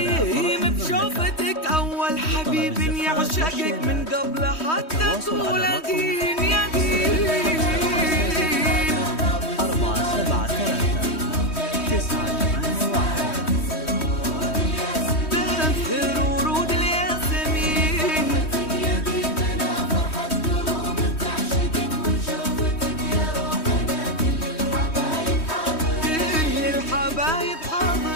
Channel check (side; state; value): right; late; 3.1 ms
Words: بشوفتك اول حبيب يعشقك من قبل حتى تولدين يا دين. 4 7 3 9 8 1 تأثر ورود الياسمين. كل الحبايب